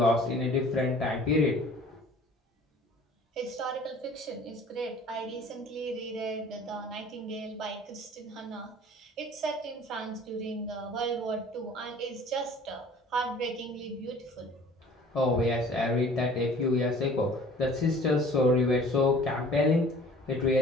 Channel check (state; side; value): normal; both; correlation 0.49